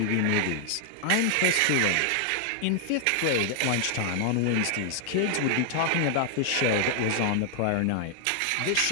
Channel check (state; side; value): different; both; correlation 0.00